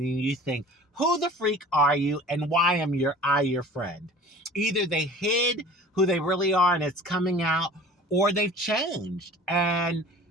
you think, who the freak are you and why am I your friend? Either they hid who they really are and it's coming out, or they've changed. And,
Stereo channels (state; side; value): normal; both; correlation 0.44